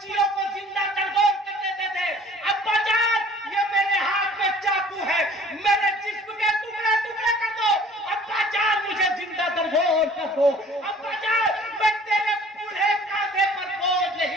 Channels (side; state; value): both; normal; correlation 0.51